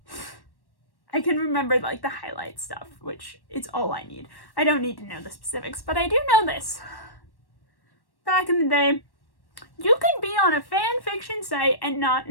can remember like the highlight stuff, which is all I need. I don't need to know the specifics, but I do know this. Back in the day, you could be on a fan fiction site and not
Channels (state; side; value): late; right; 1.1 ms